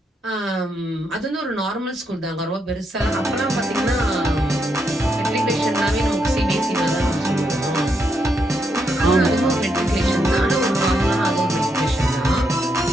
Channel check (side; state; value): both; normal; correlation 0.80